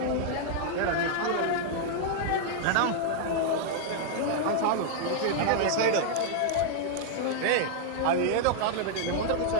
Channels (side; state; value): both; different; correlation -0.01